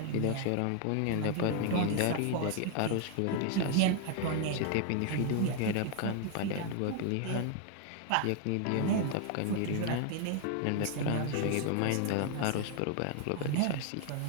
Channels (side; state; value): both; different; correlation 0.00